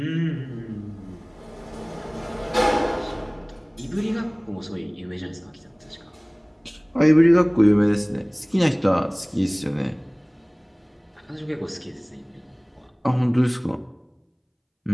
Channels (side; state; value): both; identical; correlation 1.00